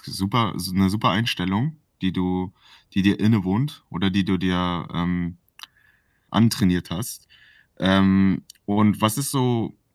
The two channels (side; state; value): both; identical; correlation 1.00